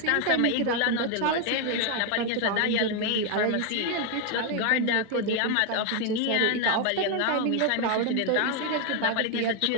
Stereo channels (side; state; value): both; different; correlation 0.01